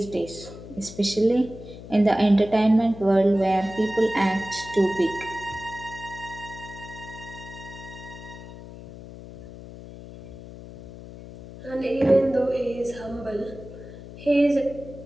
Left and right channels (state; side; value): noise; left; hum, 15 dB below the sound